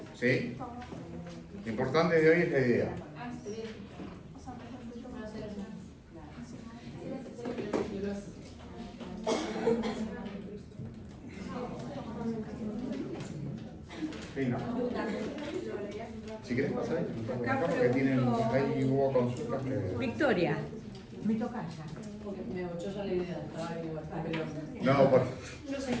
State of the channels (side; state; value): both; identical; correlation 1.00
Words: ¿sí? Lo importante de hoy es la idea. Fino. Si querés pasar ahí, acá porque ahí hubo consultas que... Victoria, me toca ya. Yo ya la idea, estaba igual, pero...